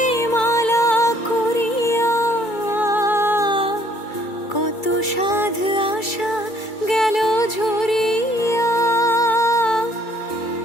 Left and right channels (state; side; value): late; right; 2.3 ms